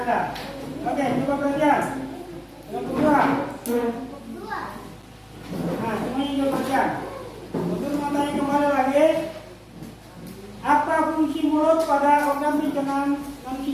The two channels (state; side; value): identical; both; correlation 1.00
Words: Anda. Oke, coba perhatian. Yang kedua. Nah, semuanya coba perhatian. Guru mau tanya kembali lagi. Apa fungsi mulut pada organ pencernaan